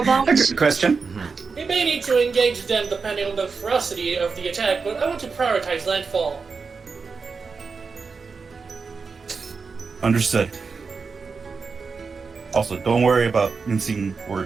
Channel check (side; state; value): left; quieter; 4.9 dB